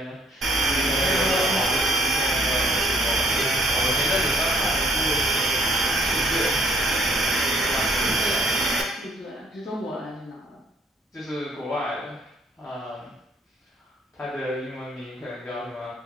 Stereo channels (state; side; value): normal; both; correlation 0.63